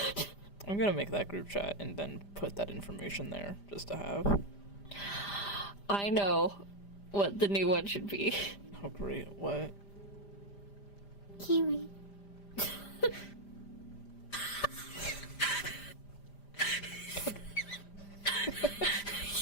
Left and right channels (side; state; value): right; late; 5.0 ms